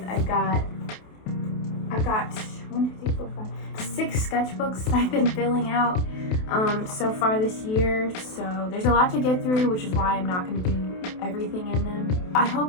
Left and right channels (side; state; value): right; late; 28 ms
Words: I've got 6 sketchbooks that I've been filling out so far this year. So there's a lot to get through, which is why I'm not going to do everything in them. I